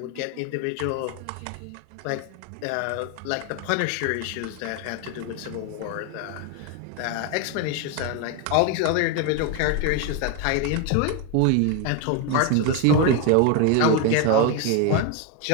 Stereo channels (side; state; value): both; different; correlation 0.02